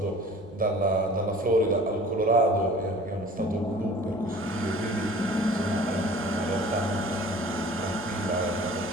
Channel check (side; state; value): both; normal; correlation 0.46